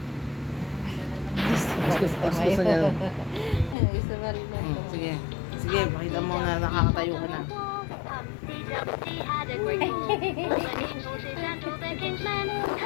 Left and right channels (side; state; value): right; drops out; at 3.8 s